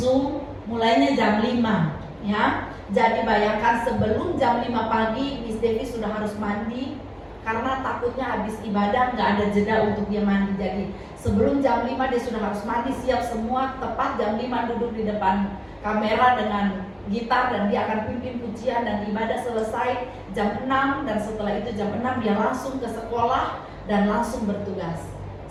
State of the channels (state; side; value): identical; both; correlation 1.00